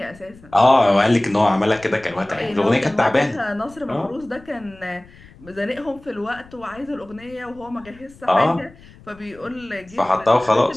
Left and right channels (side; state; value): left; noise; rumble, 23 dB below the sound